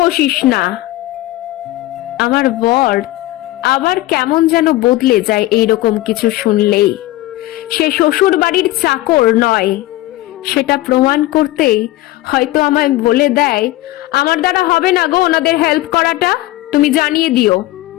বসিস না। আমার বর আবার কেমন যেন বদলে যায় এইরকম কিছু শুনলেই। সে শ্বশুর বাড়ির চাকর নয়, সেটা প্রমাণ করতেই হয়তো আমায় বলে দেয়, আমার দ্বারা হবে না গো ওনাদের হেল্প করাটা, তুমি জানিয়ে দিও।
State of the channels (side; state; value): right; quieter; 17.2 dB